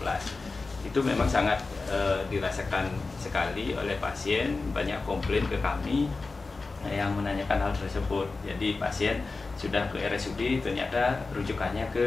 Itu memang sangat dirasakan sekali oleh pasien, banyak komplain ke kami yang menanyakan hal tersebut. Jadi pasien sudah ke RSUD ternyata rujukannya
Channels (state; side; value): quieter; right; 3.8 dB